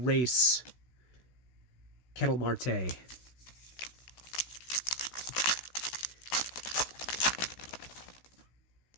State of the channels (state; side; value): late; right; 16 ms